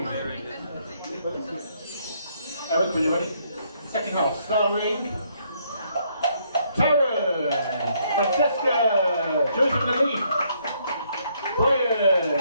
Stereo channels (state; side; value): inverted; both; correlation -0.70